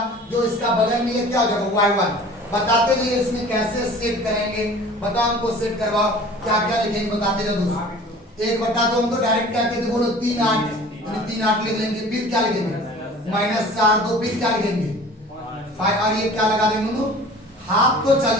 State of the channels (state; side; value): normal; both; correlation 0.44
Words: जो इसका बगल में ये क्या हो जाएगा y1। बताते जाइए इसमें कैसे सेट करेंगे, बताओ हमको सेट करवाओ, क्या क्या लिखेंगे बताते जाओ दोस्त। 1/2 हम तो डायरेक्ट क्या कहते बोलो 3 8, यानी 3 8 लिख लेंगे। फिर क्या लिखेंगे -4 2, फिर क्या लिखेंगे 5, और ये क्या लगा देंगे दोनों, हाफ तो चल